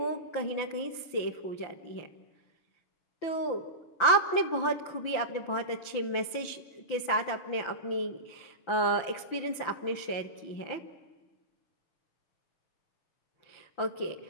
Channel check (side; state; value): right; late; 6.0 ms